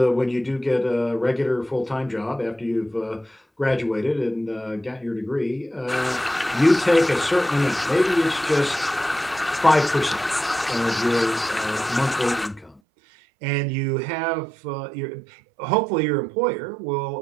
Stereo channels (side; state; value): left; drops out; at 12.8 s